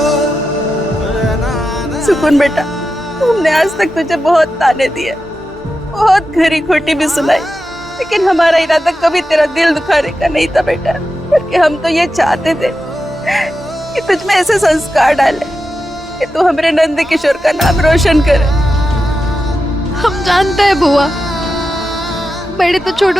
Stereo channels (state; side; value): normal; both; correlation 0.90